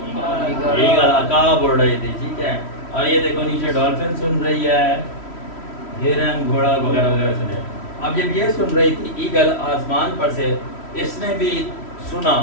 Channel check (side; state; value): right; late; 3.1 ms